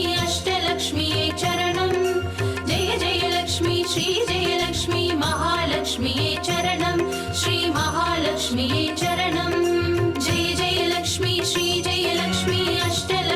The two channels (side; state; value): both; identical; correlation 1.00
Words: अष्टलक्ष्मी चरणं जय जय लक्ष्मी श्री जय लक्ष्मी महालक्ष्मी चरणं श्री महालक्ष्मी चरणं. जय जय लक्ष्मी श्री जय लक्ष्मी